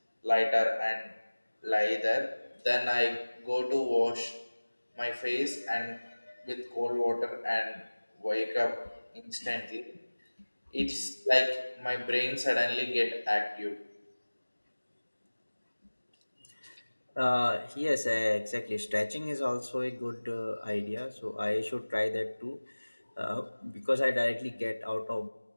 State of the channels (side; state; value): both; inverted; correlation -1.00